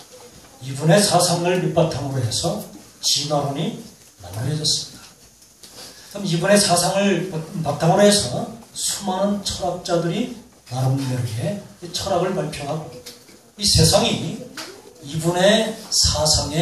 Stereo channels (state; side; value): identical; both; correlation 1.00